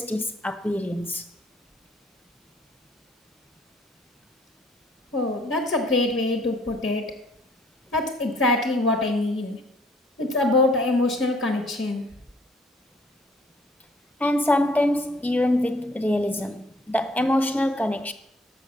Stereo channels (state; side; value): normal; both; correlation 0.60